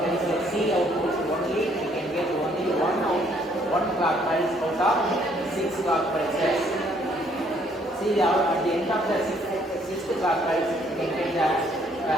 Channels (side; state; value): both; normal; correlation 0.65